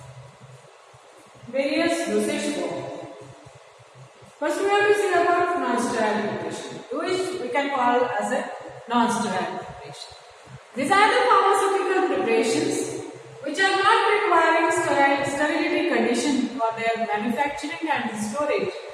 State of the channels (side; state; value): both; identical; correlation 1.00